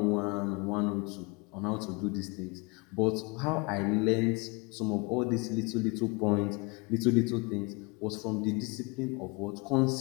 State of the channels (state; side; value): quieter; right; 28.3 dB